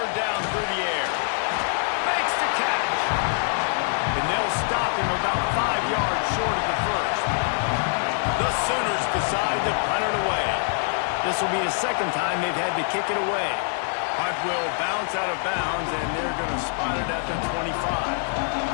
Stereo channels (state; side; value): silent; right; 62 dB below the other